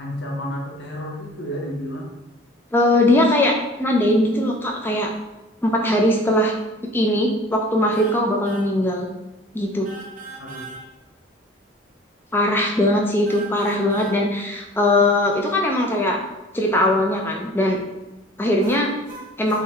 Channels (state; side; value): normal; both; correlation 0.46